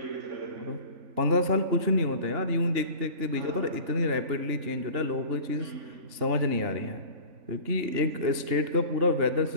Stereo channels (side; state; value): left; late; 3.5 ms